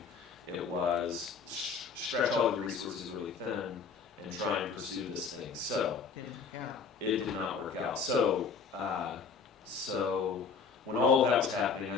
it was stretch all the resources really thin and try and pursue this thing. So, Yeah. it did not work out. So when all of that was happening, I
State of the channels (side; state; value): right; quieter; 5.5 dB